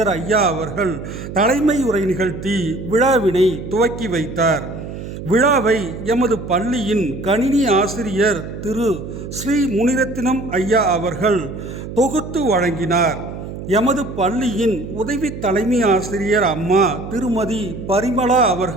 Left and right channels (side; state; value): right; noise; hum, 9 dB below the sound